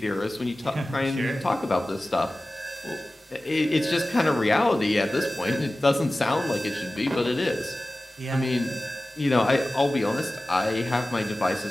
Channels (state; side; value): normal; both; correlation 0.96